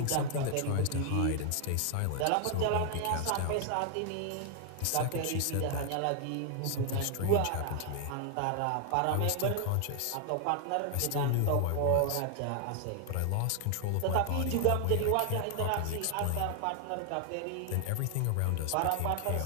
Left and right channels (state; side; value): different; both; correlation 0.00